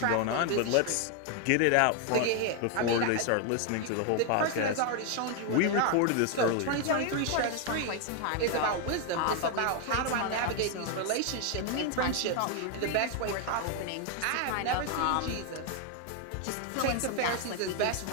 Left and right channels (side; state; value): both; different; correlation 0.00